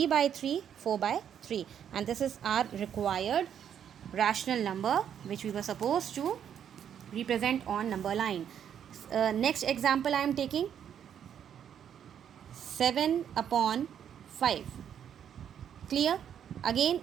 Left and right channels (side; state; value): left; quieter; 8.9 dB